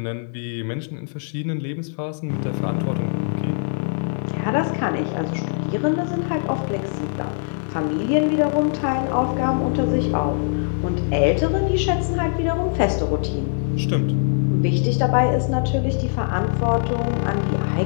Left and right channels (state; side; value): silent; right; digital silence